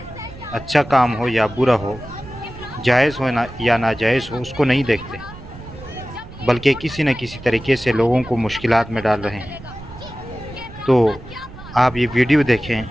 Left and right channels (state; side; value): noise; right; rumble, 16 dB below the sound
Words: अच्छा काम हो या बुरा हो, जायज़ हो ना या नाजायज़ हो, उसको नहीं देखते, बल्कि किसी न किसी तरीके से लोगों को मुश्किलात में डाल रहे हैं। तो आप ये वीडियो देखें